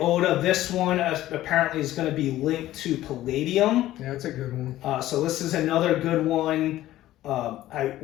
This one apparently is going to be linked to Palladium. Yeah, that's a good one. So this is another good one.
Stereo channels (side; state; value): right; quieter; 14.6 dB